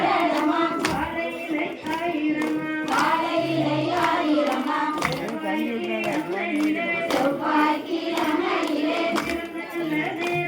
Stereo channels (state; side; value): identical; both; correlation 1.00